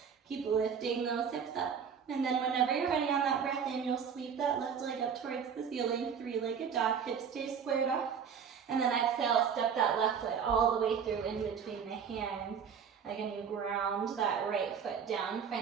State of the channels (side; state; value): left; quieter; 7.0 dB